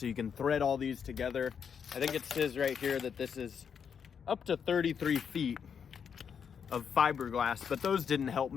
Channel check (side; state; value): right; quieter; 7.1 dB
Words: you can thread all these together. I think it says right here that this is up to 33 feet of fiberglass, but those didn't help